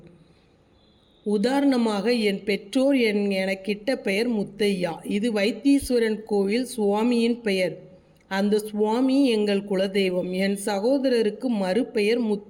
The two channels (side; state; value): both; identical; correlation 1.00